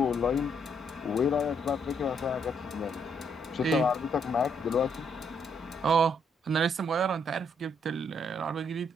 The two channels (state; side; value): normal; both; correlation 0.72